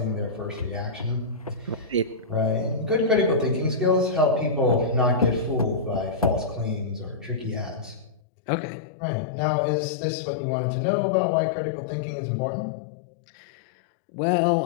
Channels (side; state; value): right; drops out; at 8.2 s